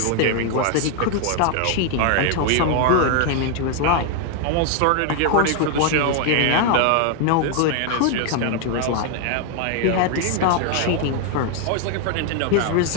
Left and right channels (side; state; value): both; different; correlation 0.00